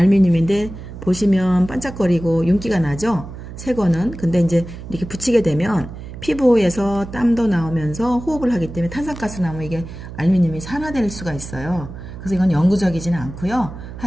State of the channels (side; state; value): right; noise; hum, 12 dB below the sound